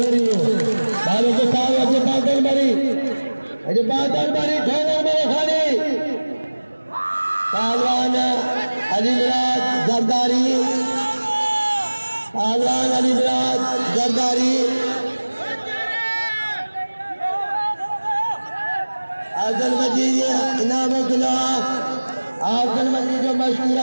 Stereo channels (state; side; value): inverted; both; correlation -1.00